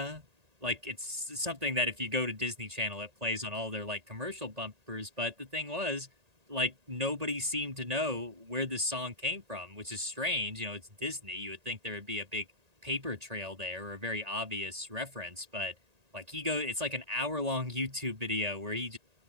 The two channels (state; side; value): late; left; 1.8 ms